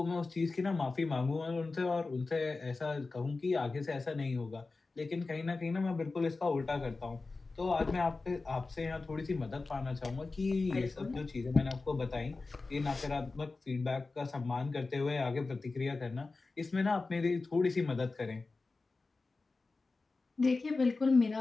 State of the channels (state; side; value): quieter; right; 3.7 dB